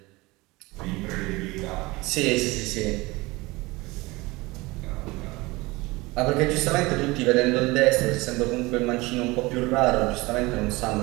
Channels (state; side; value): quieter; left; 22.4 dB